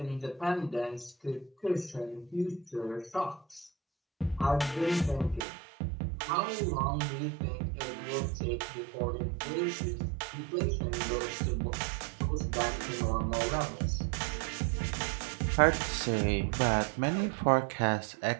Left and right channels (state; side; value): drops out; left; at 5.5 s